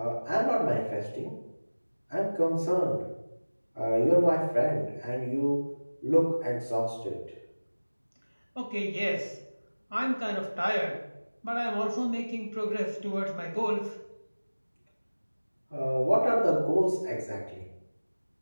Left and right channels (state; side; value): inverted; both; correlation -1.00